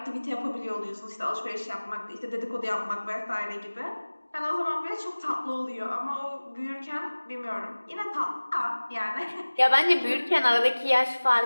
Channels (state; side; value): inverted; both; correlation -1.00